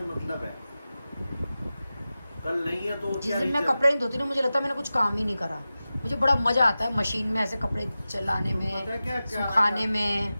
मतलब है। कल नहीं है तो जिस दिन मैं कपड़े नहीं धोती ना, मुझे लगता है मैंने कुछ काम ही नहीं करा। मुझे बड़ा मजा आता है मशीन में ऐसे कपड़े चलाने में, क्या सुखाने में।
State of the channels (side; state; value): both; inverted; correlation -0.95